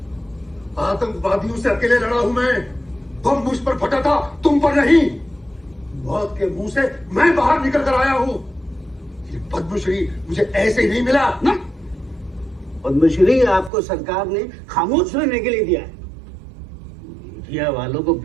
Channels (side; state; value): left; drops out; at 13.7 s